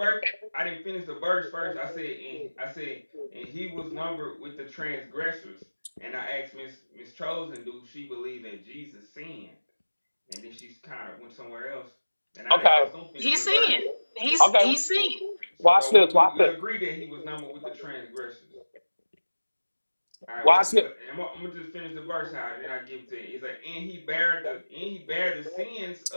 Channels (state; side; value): inverted; both; correlation -1.00